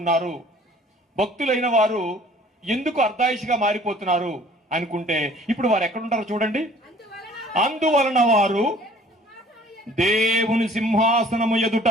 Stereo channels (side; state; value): both; normal; correlation 0.53